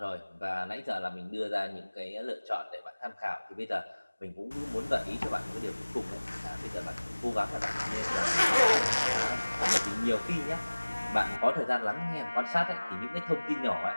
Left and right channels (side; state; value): both; inverted; correlation -1.00